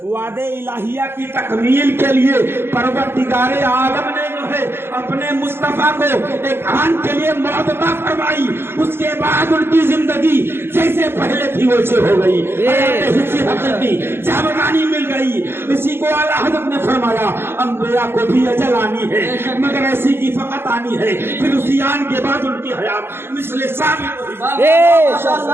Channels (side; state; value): left; late; 0.11 ms